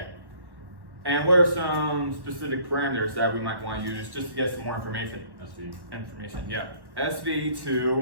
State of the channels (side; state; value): left; late; 1.1 ms